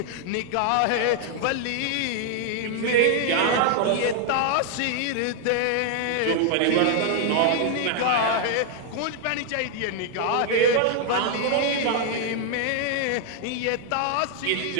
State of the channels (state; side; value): different; both; correlation 0.00